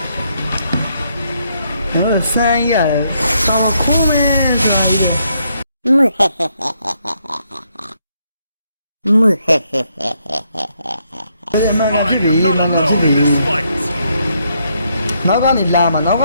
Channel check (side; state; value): both; inverted; correlation -0.75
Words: ဆန်းရတယ်ဆောင်းခိုးမယ်ဆိုတာဒီလိုဘယ်မှာ I ဖြစ်ပြီ am not ဘာဖြစ် alone ပြီ in this fight. နောက်ကနေလာမှာနောက်က